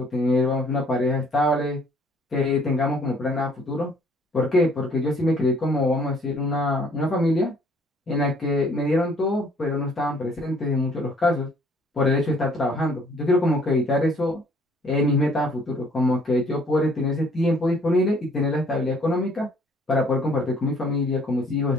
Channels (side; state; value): both; normal; correlation 0.60